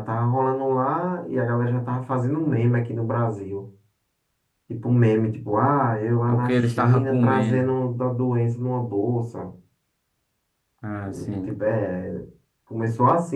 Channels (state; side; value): identical; both; correlation 1.00